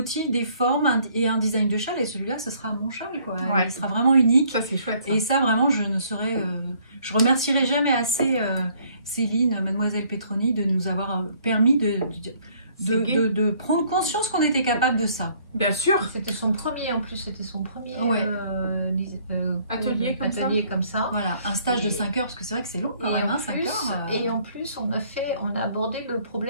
des formes et un design de châle. Et celui-là, ce sera mon châle, quoi. Ouais. Il sera vraiment unique. Ça, c'est chouette. Ça. Et ça, vraiment, je remercierai jamais assez Céline, Mademoiselle Petroni, de nous avoir permis de prendre conscience qu'on était capable de ça. Bien sûr. C'était son premier, en plus, c'était son premier atelier comme ça. Voilà, un stage de 5 heures, parce que c'est vrai que c'est long quand même, 5 heures. Et en plus, on a abordé le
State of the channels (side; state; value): both; inverted; correlation -0.62